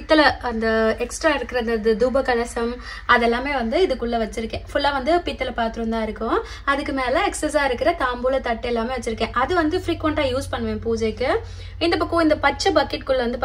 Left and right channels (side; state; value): both; identical; correlation 1.00